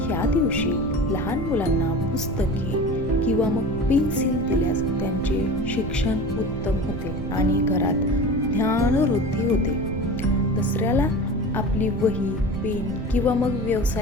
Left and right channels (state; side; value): noise; right; rumble, 7 dB below the sound